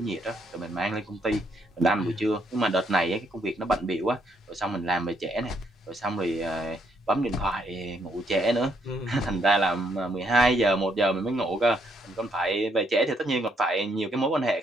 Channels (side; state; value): both; normal; correlation 0.73